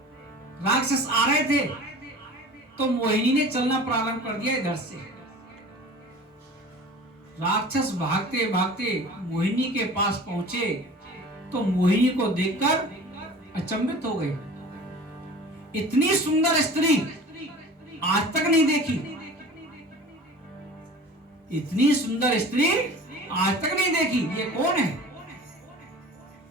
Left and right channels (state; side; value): normal; both; correlation 0.41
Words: राक्षस आ रहे थे तो मोहिनी ने चलना प्रारंभ कर दिया इधर से। राक्षस भागते भागते मोहिनी के पास पहुंचे तो मोहिनी को देखकर अचंभित हो गए। इतनी सुंदर स्त्री आज तक नहीं देखी, इतनी सुंदर स्त्री आज तक नहीं देखी, ये कौन है?